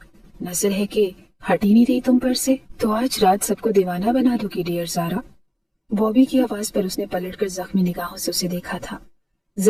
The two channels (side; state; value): both; identical; correlation 1.00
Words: नजर है कि हट ही नहीं रही तुम पर से। तो आज रात सबको दीवाना बना दोगी डियर जारा। बॉबी की आवाज पर उसने पलटकर जख्मी निगाहों से उसे देखा था।